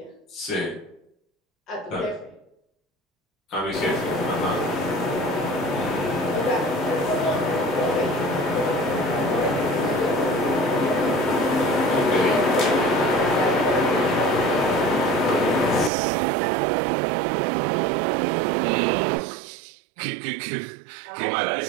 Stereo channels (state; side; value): drops out; left; at 15.9 s